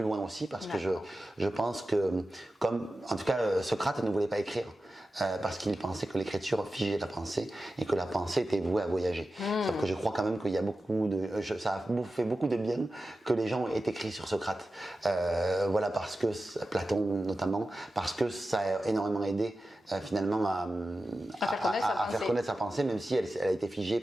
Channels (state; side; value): normal; both; correlation 0.93